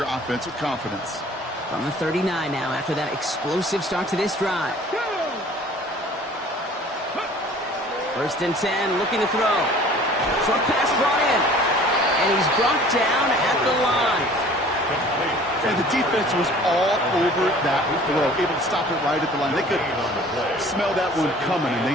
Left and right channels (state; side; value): normal; both; correlation 0.49